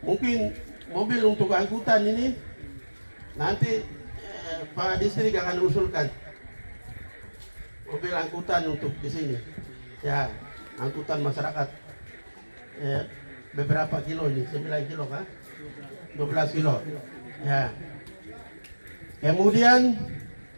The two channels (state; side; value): inverted; both; correlation -1.00